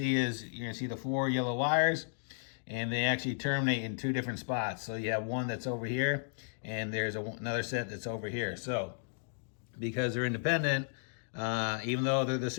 is you're gonna see the 4 yellow wires, and they actually terminate in 2 different spots. So you have one that's over here, and there's another set that's over here. So because they're independent, even though they're the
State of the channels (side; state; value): right; silent; digital silence